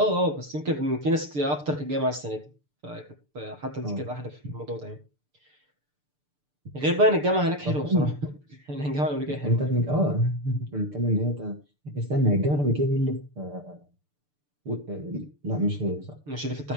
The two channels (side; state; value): left; late; 6.8 ms